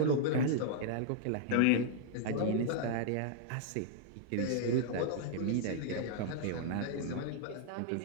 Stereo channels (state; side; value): different; both; correlation -0.01